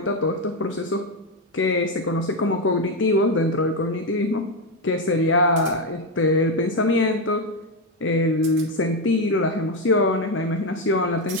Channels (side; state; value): both; normal; correlation 0.08